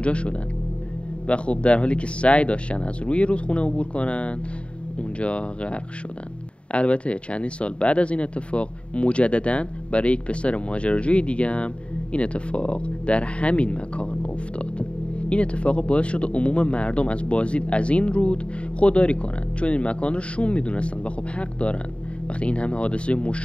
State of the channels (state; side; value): late; right; 0.059 ms